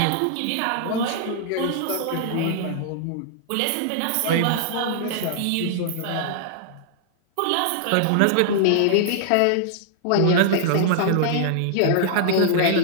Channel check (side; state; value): both; different; correlation -0.01